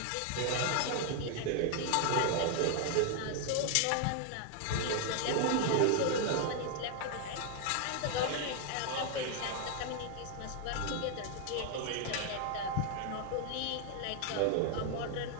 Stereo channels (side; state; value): both; different; correlation 0.00